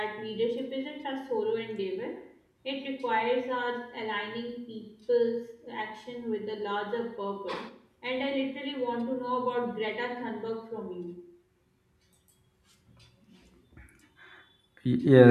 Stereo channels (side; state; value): both; identical; correlation 1.00